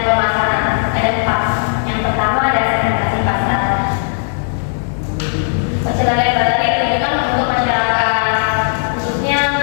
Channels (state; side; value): silent; right; digital silence